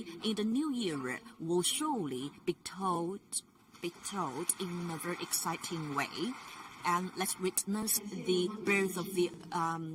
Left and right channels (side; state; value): both; identical; correlation 1.00